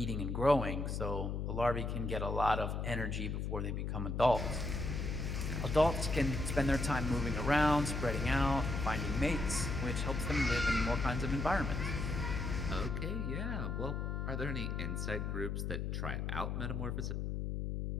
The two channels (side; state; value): left; noise; hum, 2 dB below the sound